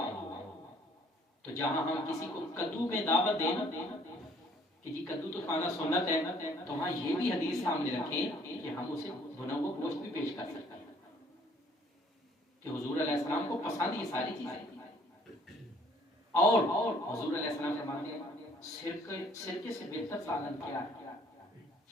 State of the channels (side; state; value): both; normal; correlation 0.60